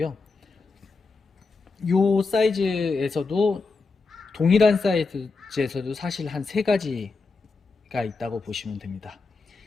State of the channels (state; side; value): quieter; right; 4.1 dB